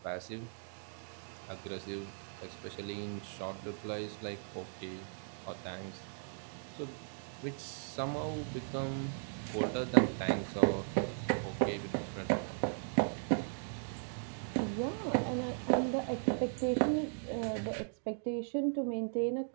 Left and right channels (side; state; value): left; silent; digital silence